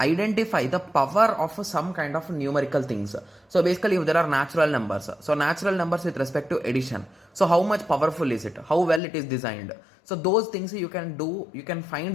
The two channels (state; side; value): drops out; right; at 9.0 s